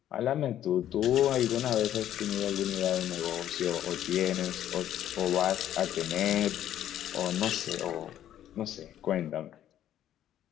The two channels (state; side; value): quieter; right; 11.5 dB